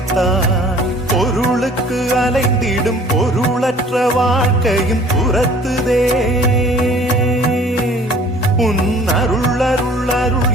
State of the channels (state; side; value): normal; both; correlation 0.52